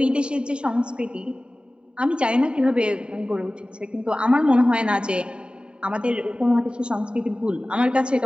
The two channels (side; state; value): left; late; 0.051 ms